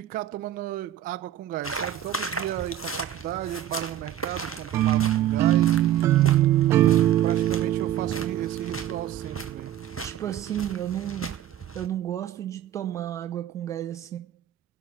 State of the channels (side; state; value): left; quieter; 11.9 dB